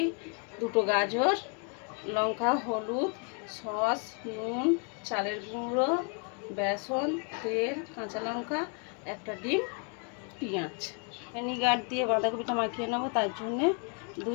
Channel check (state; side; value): quieter; right; 39.1 dB